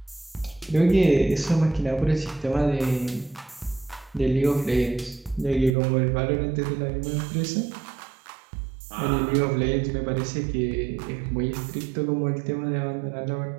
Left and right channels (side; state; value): left; drops out; at 5.8 s